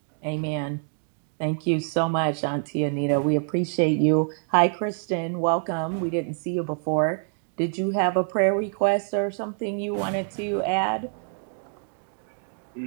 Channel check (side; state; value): left; silent; digital silence